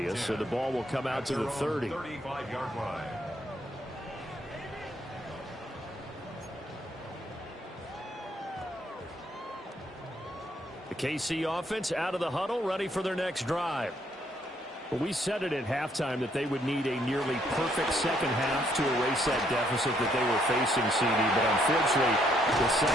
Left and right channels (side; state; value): both; normal; correlation 0.70